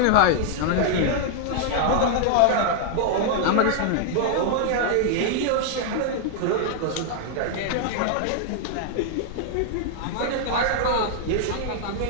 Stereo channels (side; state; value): both; different; correlation 0.00